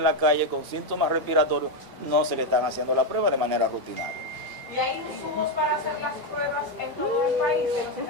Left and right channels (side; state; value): left; late; 1.0 ms